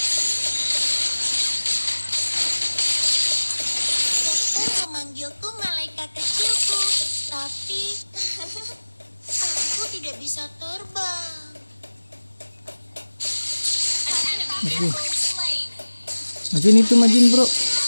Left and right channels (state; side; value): inverted; both; correlation -1.00